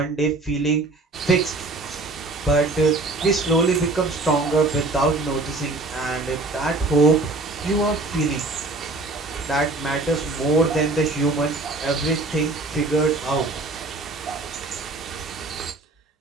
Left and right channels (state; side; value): quieter; left; 3.3 dB